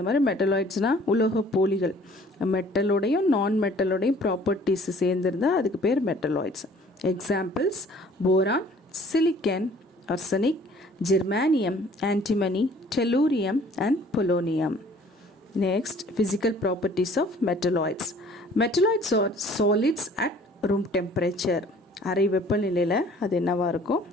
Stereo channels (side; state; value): both; normal; correlation 0.54